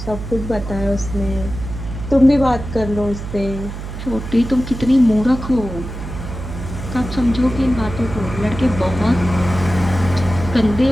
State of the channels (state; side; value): noise; right; hum, 9 dB below the sound